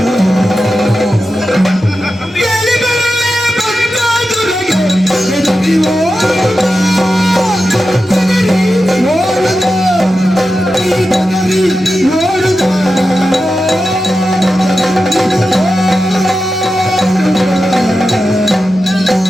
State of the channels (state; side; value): normal; both; correlation 0.91